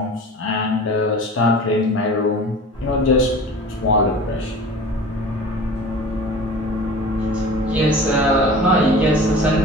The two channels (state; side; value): normal; both; correlation 0.39